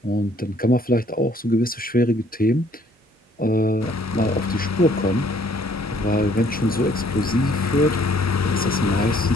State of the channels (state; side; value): normal; both; correlation 0.61